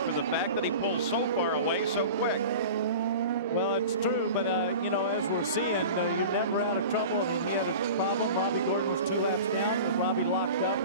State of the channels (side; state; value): both; inverted; correlation -0.36